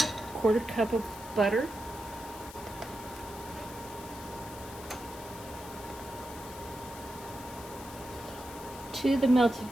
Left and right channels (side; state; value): left; noise; hiss, 15 dB below the sound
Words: quarter cup of butter. To the